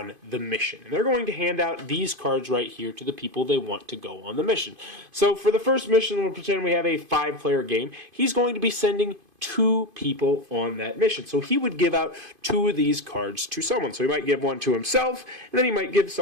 the mission. And they're going to hand out these cards right here to the people they want to go on the mission. So for the first mission, we'll pretend we have a 5-player game. He's going to be sending 2 people on that mission. So he would give out 2 of these cards to someone. So he might give one to himself, and then he might give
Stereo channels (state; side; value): late; left; 2.5 ms